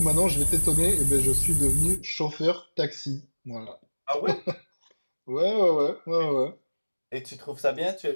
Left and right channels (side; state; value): both; inverted; correlation -1.00